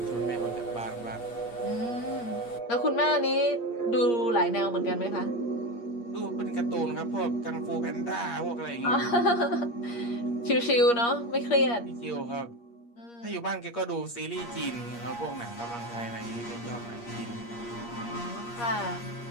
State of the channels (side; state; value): right; late; 8.5 ms